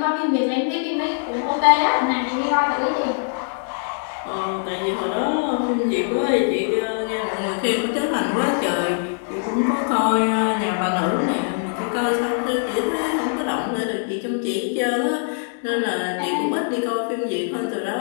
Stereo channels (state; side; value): silent; right; digital silence